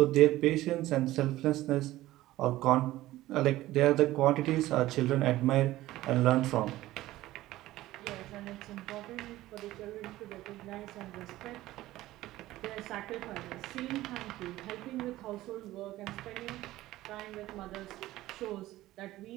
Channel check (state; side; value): quieter; left; 16.2 dB